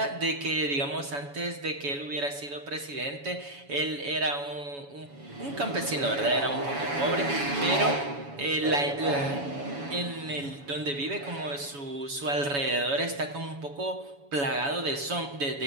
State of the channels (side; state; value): left; late; 7.1 ms